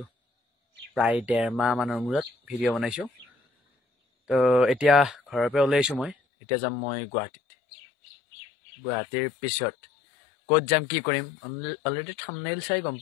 প্ৰায় 1.5 মাহ মানৰ মূৰত ভিডিঅ' বনাইছোঁ। তো এতিয়া ঘৰৰ পৰা ওলাইছোঁ মই। এতিয়া যাম মই গুৱাহাটীৰ পিছত ক'ত যাম কি কৰিম অলৰেডি থাম্বনেইল চাই গম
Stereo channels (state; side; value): drops out; right; at 6.2 s